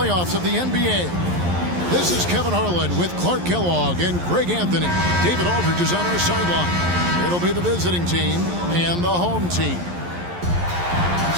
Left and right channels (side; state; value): left; late; 11 ms